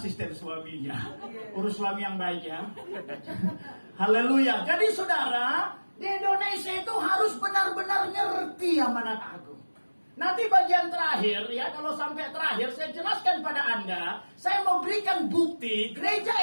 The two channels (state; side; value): inverted; both; correlation -1.00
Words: suaminya. Urus suami yang baik ya. Haleluya. Jadi saudara, di Indonesia itu harus benar-benar ngerti amanat agung. Nanti bagian terakhir ya, kalau sampai terakhir saya jelaskan pada Anda, saya mau berikan bukti gereja